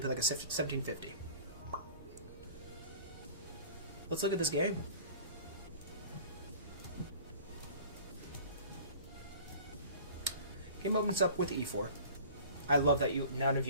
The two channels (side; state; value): both; inverted; correlation -0.44